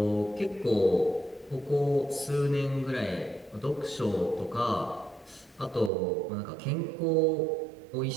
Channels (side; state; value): left; drops out; at 5.9 s